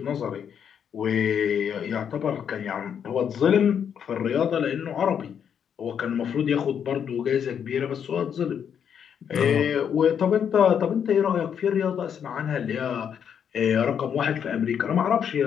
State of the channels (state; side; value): quieter; right; 8.1 dB